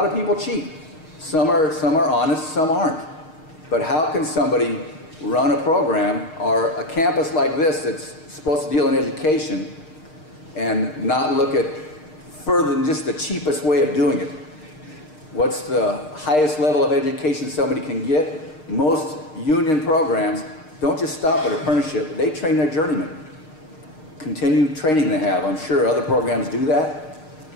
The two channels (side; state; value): right; late; 6.4 ms